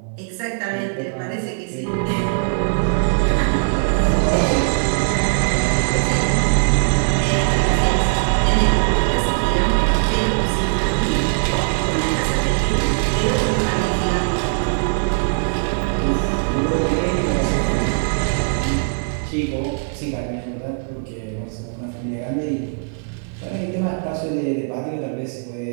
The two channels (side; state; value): left; silent; 66 dB below the other